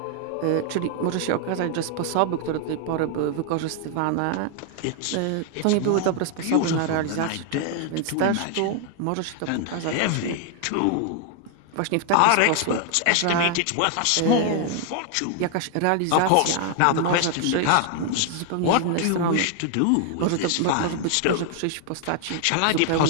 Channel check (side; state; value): both; different; correlation 0.00